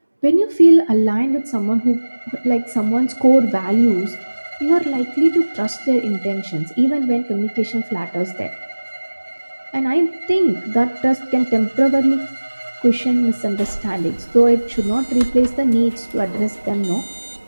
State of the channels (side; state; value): both; inverted; correlation -1.00